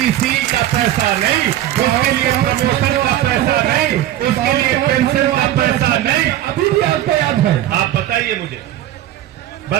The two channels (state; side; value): quieter; left; 12.9 dB